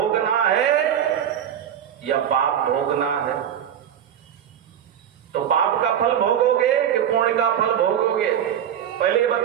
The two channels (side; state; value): left; quieter; 9.6 dB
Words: है या पाप भोगना है? तो पाप का फल भोगोगे कि पुण्य का फल भोगोगे? पहले ये